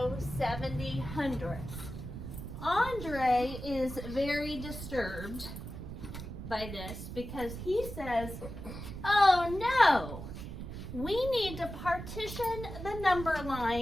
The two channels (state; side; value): noise; right; rumble, 9 dB below the sound